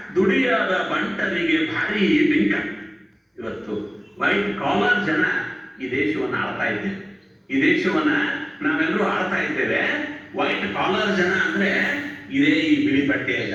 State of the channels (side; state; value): both; identical; correlation 1.00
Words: ದುಡಿಯಾದ ಬಂಟರಿಗೆ ಭಾರಿ ಬಿಂಕ. ಇವತ್ತು ವೈಟ್ ಕಾಲರ್ ಜನ ಈ ದೇಶವನ್ನು ಆಳ್ತಾ ಇದ್ದೇವೆ. ಈ ದೇಶವನ್ನ ನಾವೆಲ್ಲರೂ ಆಳ್ತಾ ಇದ್ದೇವೆ. ವೈಟ್ ಕಾಲರ್ ಜನ ಅಂದ್ರೆ ಇದೇ ಈ ಬಿಳಿ ಬಟ್ಟೆಯ